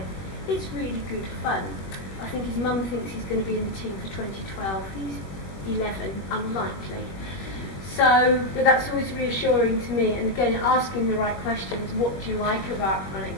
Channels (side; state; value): right; late; 21 ms